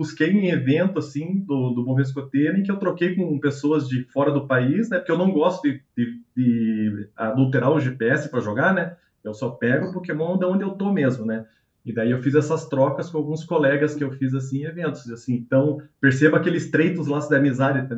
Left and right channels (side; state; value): both; identical; correlation 1.00